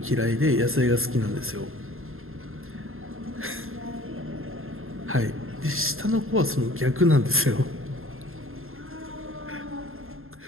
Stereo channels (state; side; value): late; left; 0.61 ms